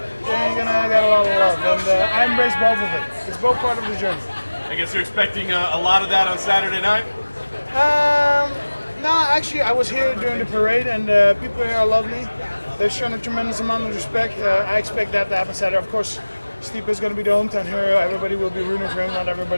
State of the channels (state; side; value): inverted; both; correlation -1.00